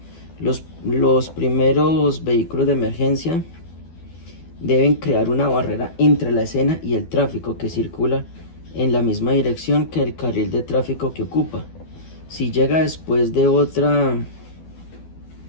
Los primeros vehículos de emergencia deben crear una barrera entre la escena y el tráfico que circula en la misma dirección que el carril de tráfico que ocupa. Si llega después de otra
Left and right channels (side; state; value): right; late; 12 ms